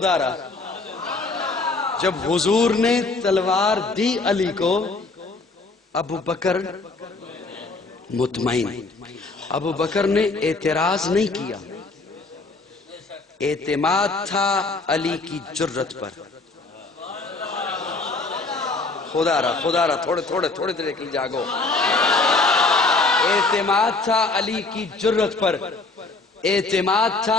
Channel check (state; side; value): quieter; right; 3.6 dB